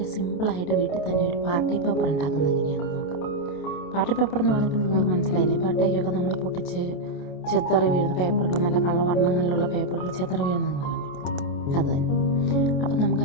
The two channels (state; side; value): late; right; 27 ms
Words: സിമ്പിളായിട്ട് വീട്ടിൽ തന്നെ ഒരു പാർട്ടി പേപ്പർ ഉണ്ടാക്കുന്നത് എങ്ങനെയാണെന്ന് നോക്കാം. പാർട്ടി പേപ്പർ എന്ന് പറഞ്ഞപ്പോൾ നിങ്ങൾക്ക് മനസ്സിലായില്ലേ, ബർത്ത്ഡേക്കൊക്കെ നമ്മൾ പൊട്ടിച്ച് ചെത്തറി വീഴുന്ന പേപ്പറുകൾ, നല്ല കളവർണ്ണങ്ങളിലുള്ള പേപ്പറുകൾ ചെത്തറി വീഴുന്നത് കണ്ടില്ലേ, അത് തന്നെ. അപ്പം നമുക്ക്